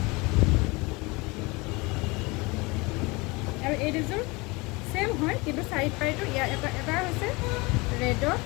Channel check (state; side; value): quieter; right; 25.4 dB